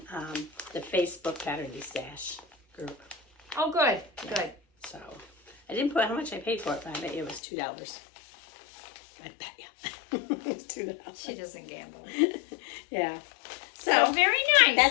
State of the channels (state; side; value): drops out; right; at 7.4 s